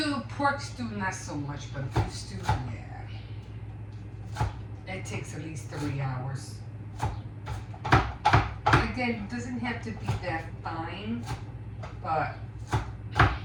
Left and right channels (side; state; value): both; identical; correlation 1.00